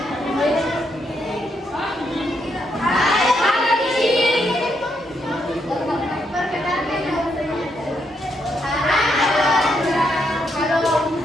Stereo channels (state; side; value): normal; both; correlation 0.78